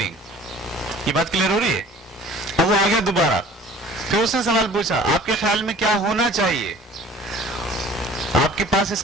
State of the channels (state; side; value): normal; both; correlation 0.48